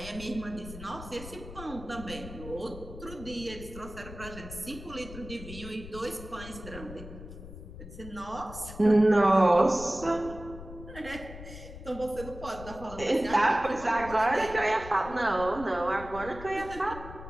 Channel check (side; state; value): left; noise; rumble, 13 dB below the sound